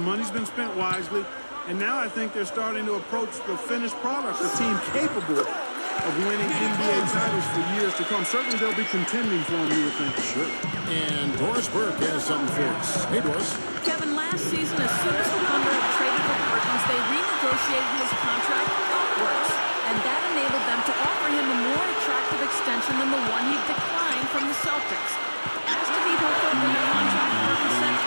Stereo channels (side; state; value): both; inverted; correlation -1.00